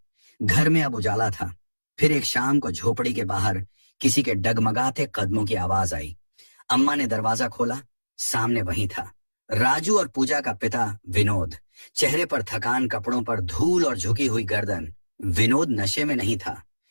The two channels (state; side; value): inverted; both; correlation -1.00